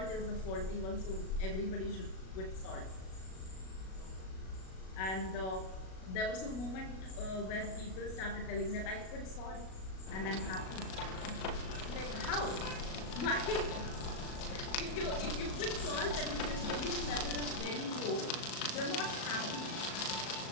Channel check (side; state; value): right; late; 37 ms